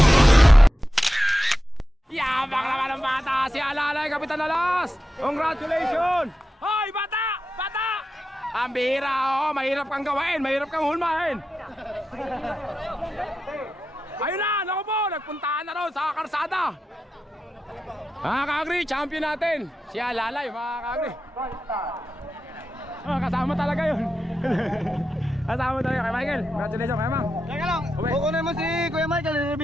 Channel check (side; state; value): both; normal; correlation 0.90